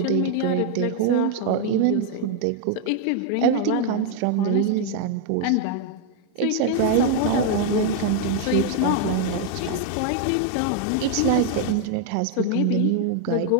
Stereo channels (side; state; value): both; different; correlation 0.00